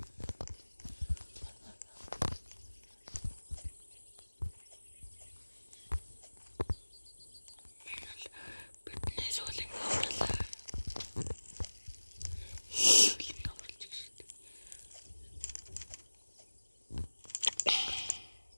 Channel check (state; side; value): inverted; both; correlation -1.00